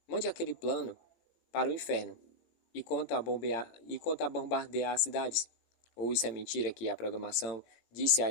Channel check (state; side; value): late; right; 18 ms